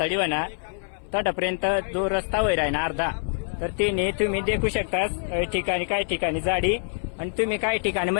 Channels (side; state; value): right; silent; 58 dB below the other